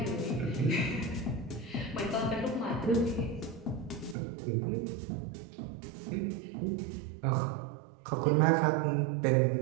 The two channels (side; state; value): left; drops out; at 4.2 s